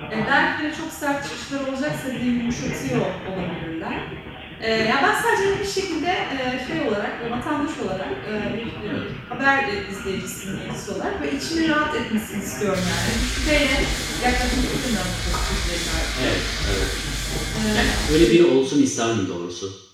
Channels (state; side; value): identical; both; correlation 1.00